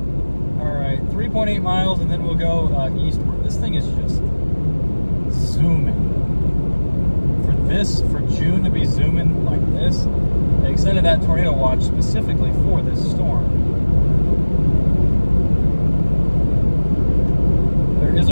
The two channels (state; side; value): inverted; both; correlation -1.00